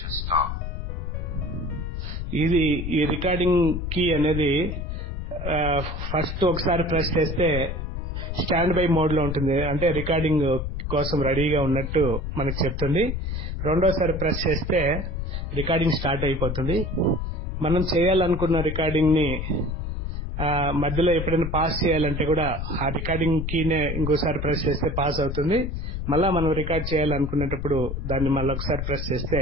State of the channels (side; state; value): left; noise; rumble, 4 dB below the sound